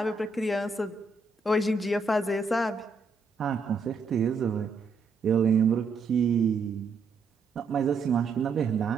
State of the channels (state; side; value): quieter; left; 4.2 dB